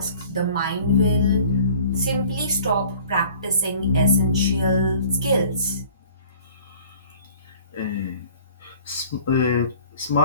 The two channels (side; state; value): both; inverted; correlation -0.51